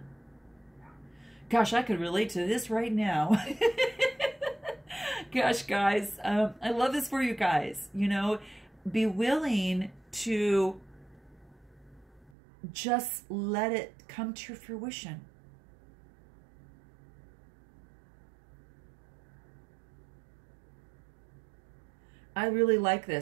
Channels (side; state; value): left; drops out; at 12.3 s